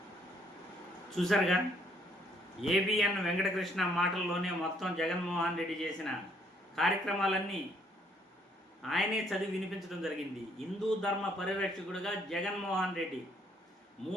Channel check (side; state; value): both; normal; correlation 0.67